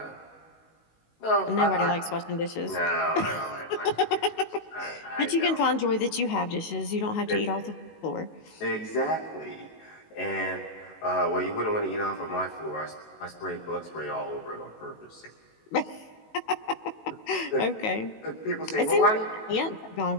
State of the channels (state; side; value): late; right; 19 ms